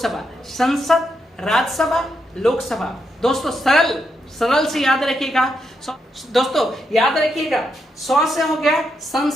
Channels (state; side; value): normal; both; correlation 0.81